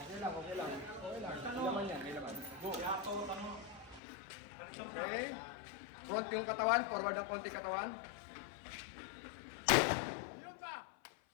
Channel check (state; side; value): drops out; right; at 4.0 s